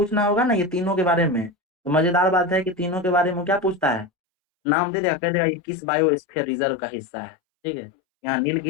होगा ना, ये तीनों के बारे में, तो मजेदार बात है कि तीनों के बारे में क्या पूछता है, नाम दे देगा, कह देगा ये किस बायोस्फीयर रिजर्व का हिस्सा है, ठीक है। यहाँ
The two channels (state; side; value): drops out; right; at 4.1 s